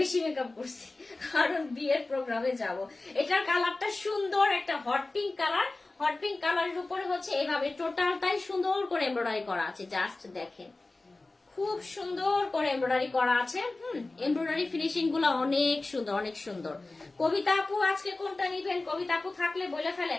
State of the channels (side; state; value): right; quieter; 3.2 dB